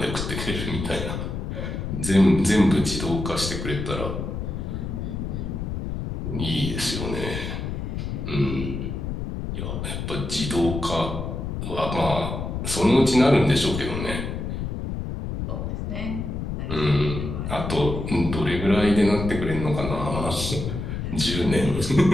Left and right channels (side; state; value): left; noise; rumble, 4 dB below the sound